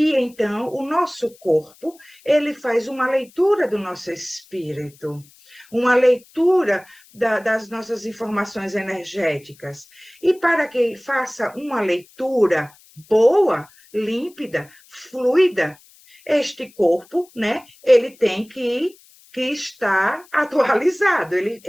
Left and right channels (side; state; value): left; noise; hiss, 27 dB below the sound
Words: então, o nosso corpo, ele faz uma leitura do nosso espírito, uma leitura das nossas informações energéticas. E para que faça uma leitura boa, límpida, fluida, este corpo, né, ele tem que estar atualizado,